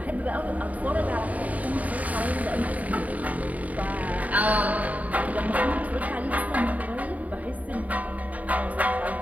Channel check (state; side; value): late; left; 0.071 ms